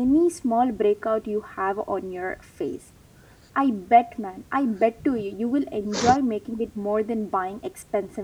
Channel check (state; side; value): identical; both; correlation 1.00